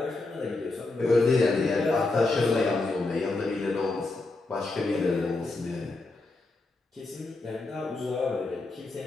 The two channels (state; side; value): quieter; right; 3.3 dB